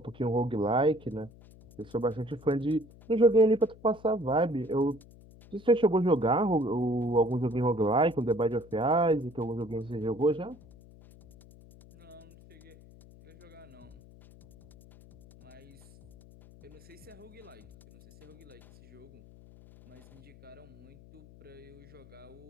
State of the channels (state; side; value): noise; left; hum, 22 dB below the sound